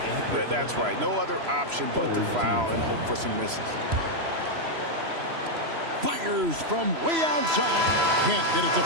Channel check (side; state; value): left; late; 3.0 ms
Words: That's right. No other option but to foul and hope for some misses. Fires from way outside. Can't get it to